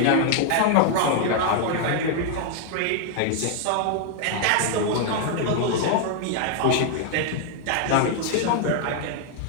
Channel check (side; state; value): both; different; correlation 0.00